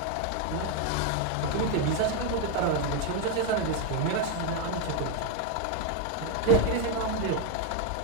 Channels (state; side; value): different; both; correlation 0.02